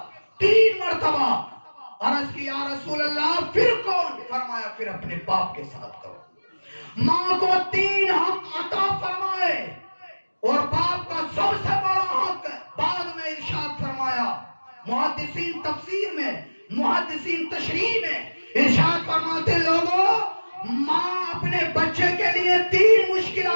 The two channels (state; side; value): inverted; both; correlation -1.00